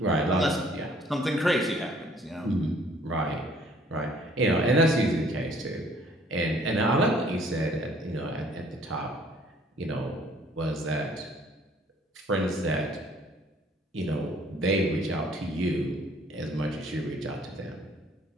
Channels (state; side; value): normal; both; correlation 0.58